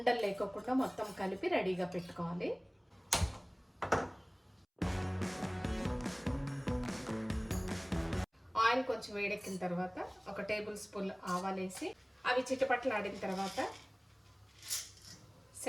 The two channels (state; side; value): identical; both; correlation 1.00